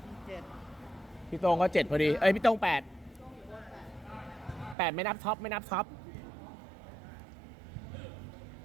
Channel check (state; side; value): drops out; left; at 4.8 s